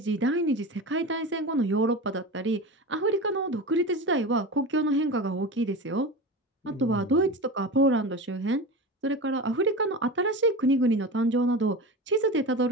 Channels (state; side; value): normal; both; correlation 0.27